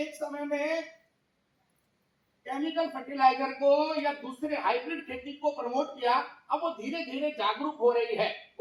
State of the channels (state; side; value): identical; both; correlation 1.00